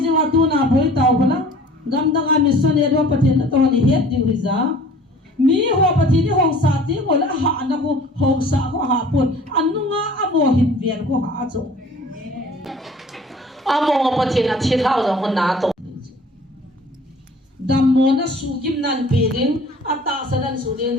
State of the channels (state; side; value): normal; both; correlation 0.48